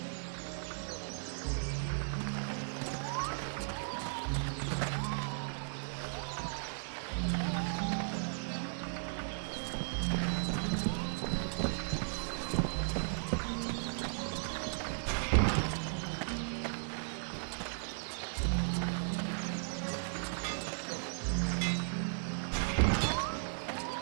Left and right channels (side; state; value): left; silent; digital silence